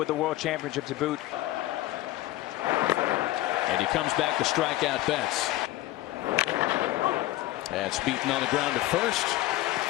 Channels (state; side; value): quieter; right; 16.3 dB